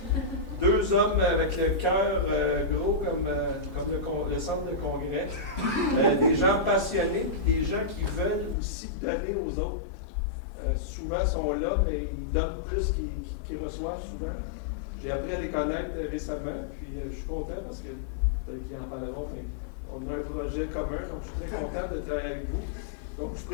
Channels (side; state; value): right; drops out; at 8.6 s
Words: Deux hommes avec le cœur gros comme le centre de congrès. Des gens passionnés, des gens qui veulent aussi donner aux autres. Souvent sont là, mais ils donnent plus qu'ils reçoivent souvent. J'ai appris à les connaître récemment, puis je suis content parce que peut-être qu'ils en parleront, mais on a un projet commun, donc je suis très content de travailler avec vous. Donc je